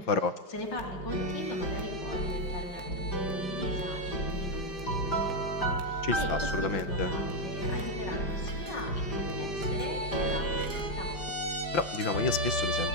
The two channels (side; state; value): right; late; 5.8 ms